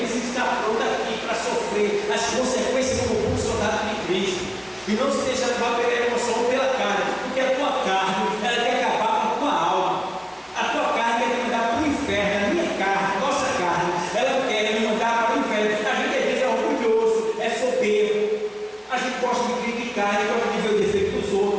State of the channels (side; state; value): both; identical; correlation 1.00